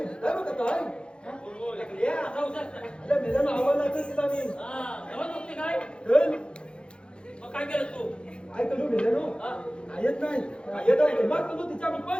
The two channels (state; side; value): late; right; 0.054 ms